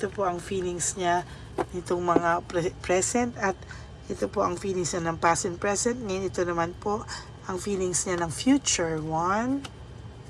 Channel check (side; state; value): both; identical; correlation 1.00